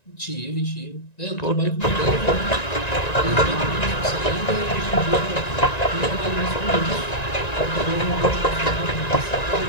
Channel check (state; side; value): late; right; 1.9 ms